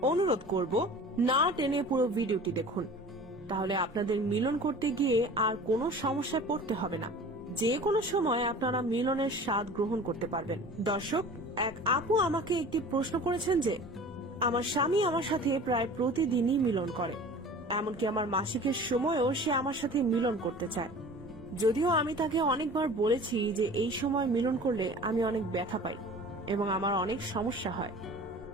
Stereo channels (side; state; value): both; normal; correlation 0.42